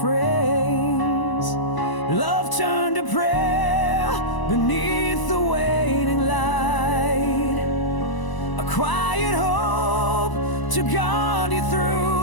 Love turned to prayer beneath the waning light, a quiet hope to guard you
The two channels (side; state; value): right; late; 1.0 ms